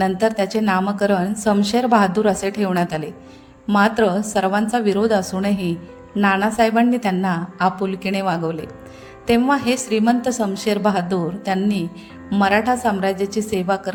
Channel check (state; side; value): identical; both; correlation 1.00